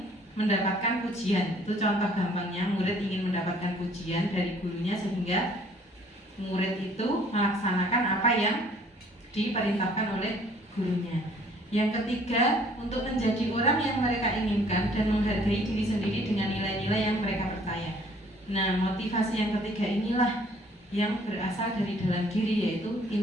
mendapatkan pujian. Itu contoh gampangnya, murid ingin mendapatkan pujian dari gurunya sehingga murid itu melaksanakan apa yang diperintahkan oleh gurunya. Yang ketiga, untuk menjadi orang yang mereka inginkan dan menghargai diri sendiri dengan nilai-nilai yang mereka percaya. Nah, motivasi yang ketiga inilah yang berasal dari dalam diri, yaitu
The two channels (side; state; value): both; normal; correlation 0.58